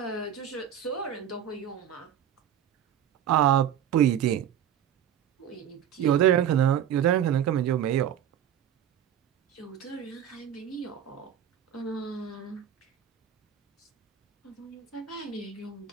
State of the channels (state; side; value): quieter; left; 9.8 dB